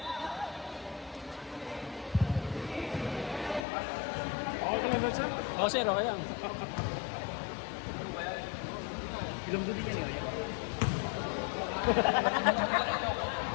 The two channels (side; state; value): right; drops out; at 3.7 s